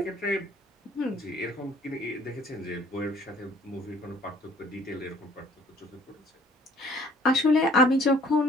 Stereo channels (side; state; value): both; normal; correlation 0.56